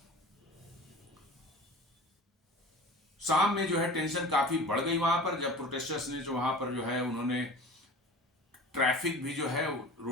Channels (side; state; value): both; normal; correlation 0.39